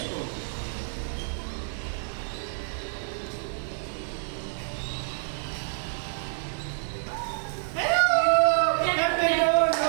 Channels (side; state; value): left; silent; digital silence